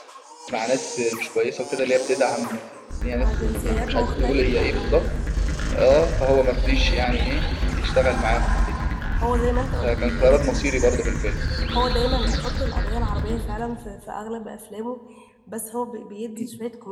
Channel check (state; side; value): identical; both; correlation 1.00